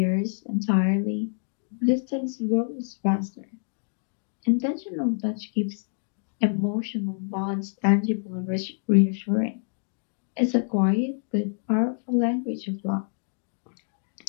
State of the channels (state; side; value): silent; right; digital silence